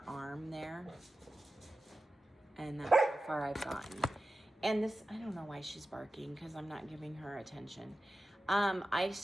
arm there. And that's how far I've gotten. And this, I don't know why she's barking, because I'm not giving her attention. I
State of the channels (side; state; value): both; normal; correlation 0.93